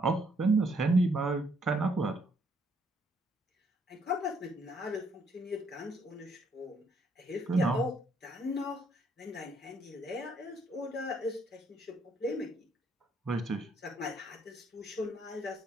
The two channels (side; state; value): both; normal; correlation 0.70